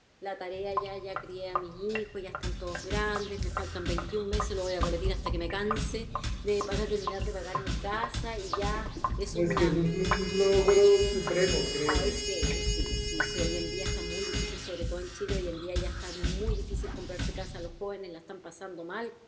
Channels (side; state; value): both; identical; correlation 1.00